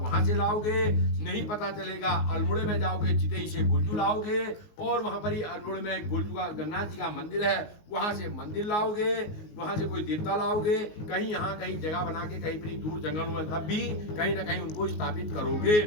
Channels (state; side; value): late; right; 19 ms